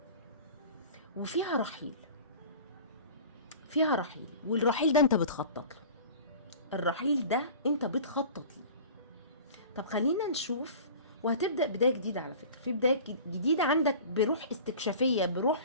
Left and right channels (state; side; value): inverted; both; correlation -0.41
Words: وفيها رحيل، والرحيل ده انت بتخطط له. الرحيل ده انت بتخطط له. طب خلينا نشوف. وهتبدأ بداية جديدة على فكرة، في بداية جديدة عندك بروح استكشافية،